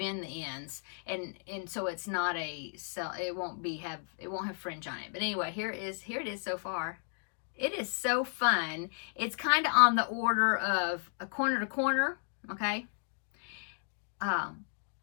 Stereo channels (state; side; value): silent; right; 55 dB below the other